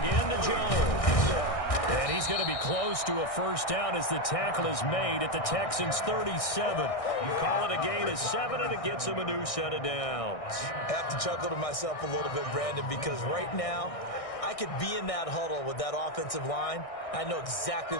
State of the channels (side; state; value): right; late; 1.6 ms